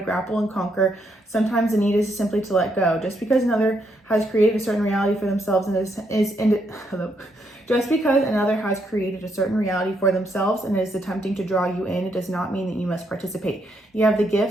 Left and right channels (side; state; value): both; normal; correlation 0.76